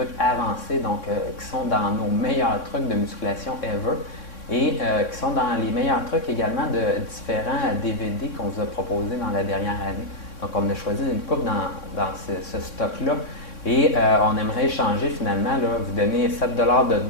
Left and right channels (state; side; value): late; right; 3.6 ms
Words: avancés, donc qui sont dans nos meilleurs trucs de musculation ever. Et qui sont dans les meilleurs trucs également de différents DVD qu'on vous a proposés dans la dernière année. Donc, on a choisi une coupe dans ce stock-là et on aimerait échanger finalement, là, vous donner 7 $ de